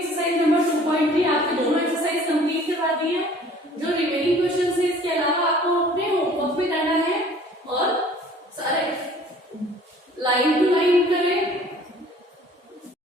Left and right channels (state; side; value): normal; both; correlation 0.52